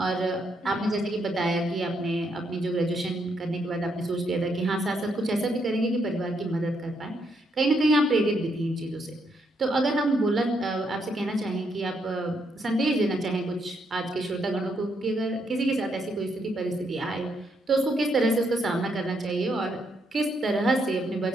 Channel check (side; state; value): both; normal; correlation 0.76